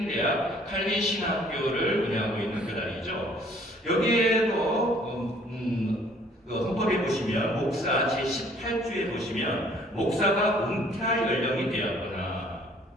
대학 칼빈 신학교를 운영하고 있는 교단이죠. 여기에도 헌법에 보시면 목사 제18조에 보시면 목사가 은퇴할 연령이 되었거나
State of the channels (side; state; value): both; normal; correlation 0.58